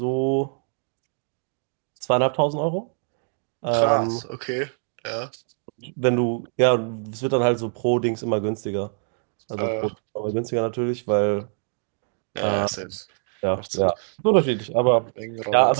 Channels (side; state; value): left; silent; 55 dB below the other